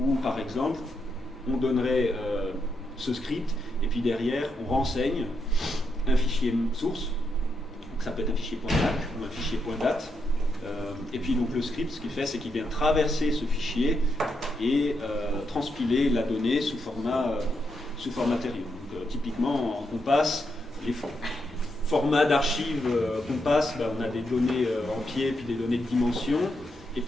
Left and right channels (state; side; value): normal; both; correlation 0.81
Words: par exemple, on donnerait ce script, et puis derrière, on renseigne un fichier source, donc ça peut être un fichier .dac ou un fichier .dat. Et puis donc le script, ce qu'il fait, c'est qu'il vient traverser ce fichier et transpiler la donnée sous format Deuterion. Donc, typiquement, on passe les formats d'archives qu'on passe, on a des données en pied, puis des données de dimension, et